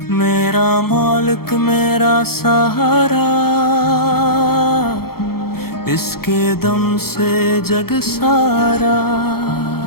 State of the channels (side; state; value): right; late; 0.94 ms